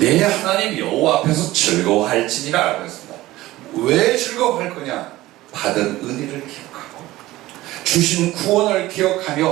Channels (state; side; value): quieter; left; 17.1 dB